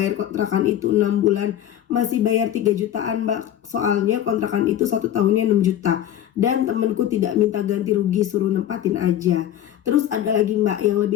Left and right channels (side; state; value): right; quieter; 11.2 dB